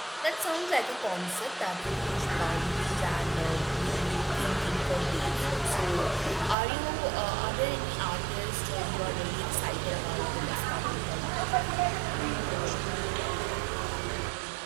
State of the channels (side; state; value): left; drops out; at 6.6 s